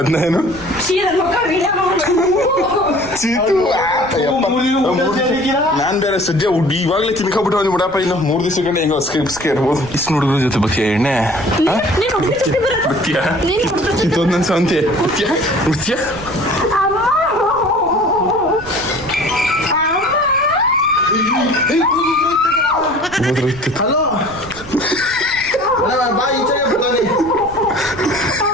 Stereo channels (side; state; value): right; noise; rumble, 17 dB below the sound